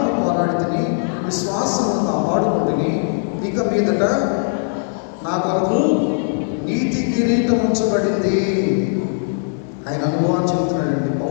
పోరాడితిని, విశ్వాసమును కాపాడుకుంటుని, ఇక మీదట నా కొరకు నీతి కిరీటం ఉంచబడింది. ఆయన అనుభవాన్ని చెప్తున్నాడండి,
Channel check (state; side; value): silent; right; digital silence